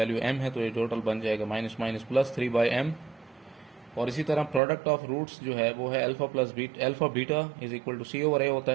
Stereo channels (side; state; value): left; drops out; at 4.6 s